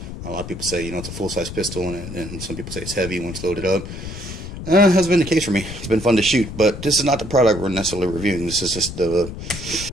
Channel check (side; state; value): left; noise; rumble, 10 dB below the sound